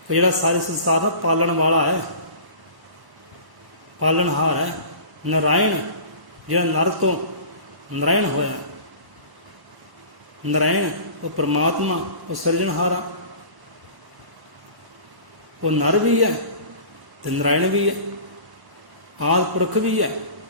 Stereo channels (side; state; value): left; late; 1.1 ms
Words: ਜਿਹੜਾ ਸਾਰੇ ਸੰਸਾਰ ਦਾ ਪਾਲਣ ਵਾਲਾ ਹੈ, ਪਾਲਣਹਾਰ ਹੈ। ਨਾਰਾਇਣ ਜਿਹੜਾ ਨਰ ਤੋਂ ਨਾਰਾਇਣ ਹੋਇਆ। ਨਾਰਾਇਣ ਉਹ ਪਰਮਾਤਮਾ, ਉਹ ਸਿਰਜਣਹਾਰਾ। ਉਹ ਨਰ ਵੀ ਹੈ ਤੇ ਨਾਰਾਇਣ ਵੀ ਹੈ, ਆਦਿ ਪੁਰਖ ਵੀ ਹੈ